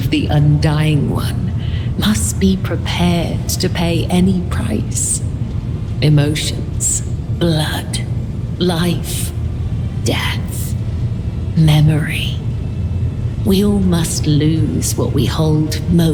the Undying One, must be prepared to pay any price. Emotions, blood, life, death, memory. We all must lose what we hold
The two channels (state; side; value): identical; both; correlation 1.00